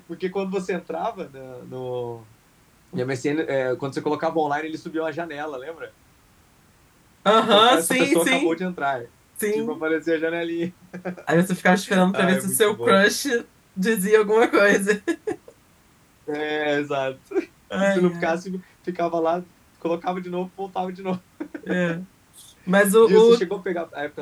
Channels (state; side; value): identical; both; correlation 1.00